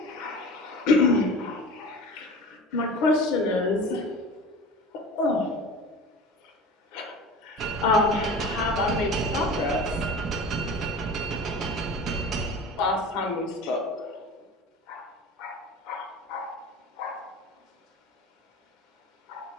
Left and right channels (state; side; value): normal; both; correlation 0.36